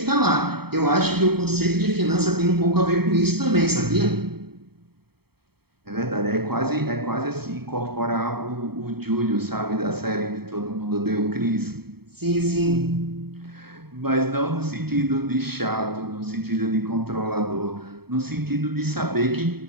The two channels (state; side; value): late; left; 0.96 ms